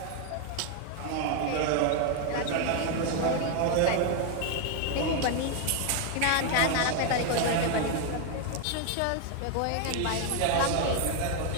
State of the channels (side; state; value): both; different; correlation 0.01